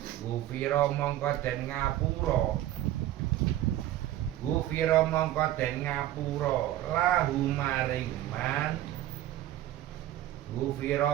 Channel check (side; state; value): left; quieter; 13.8 dB